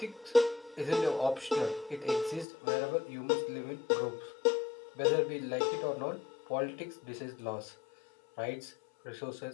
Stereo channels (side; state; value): right; drops out; at 2.5 s